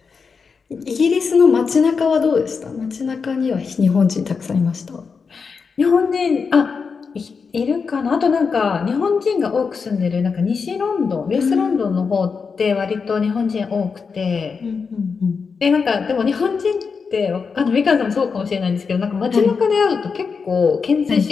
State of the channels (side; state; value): right; quieter; 5.4 dB